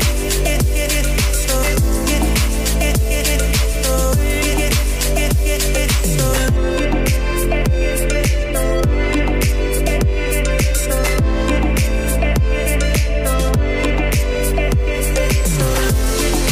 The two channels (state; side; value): identical; both; correlation 1.00